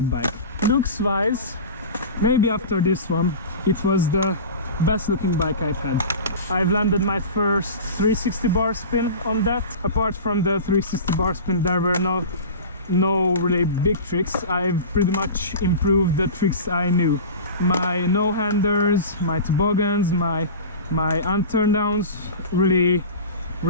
bike. Looks wise, maybe after this one, it was the best looking bike I've had. I've landed my first 360 bar spin on that. Apart from the 360 bar spin, there were no really big tricks. I've pretty much improved the tricks I knew. My no-handers, my toboggans, my unturned downs really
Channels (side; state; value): both; inverted; correlation -0.32